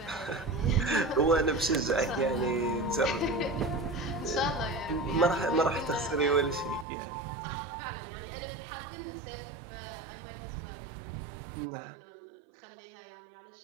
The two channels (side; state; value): left; drops out; at 6.9 s